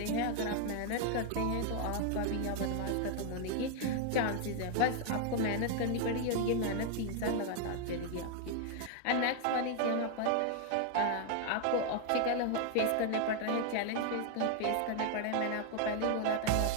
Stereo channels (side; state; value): both; different; correlation 0.00